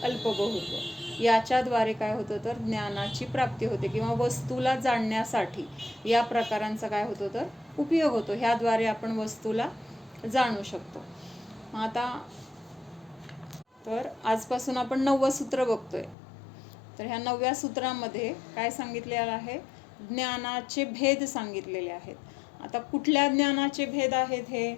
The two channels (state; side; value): drops out; right; at 16.2 s